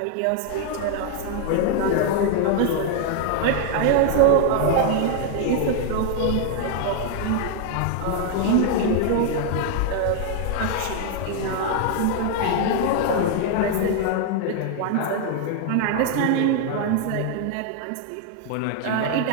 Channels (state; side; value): different; both; correlation 0.00